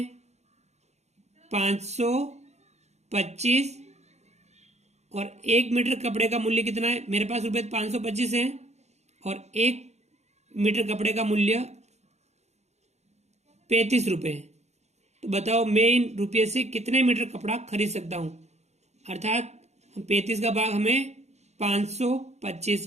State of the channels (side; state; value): left; late; 0.32 ms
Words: 525, और 1 मीटर कपड़े का मूल्य कितना है? मेरे पास रुपये 525 है और 1 मीटर कपड़े का मूल्य 35 रुपए है। तो बताओ मैं इन रुपये से कितने मीटर कपड़ा खरीद सकता हूं। अर्थात 35 का भाग हमें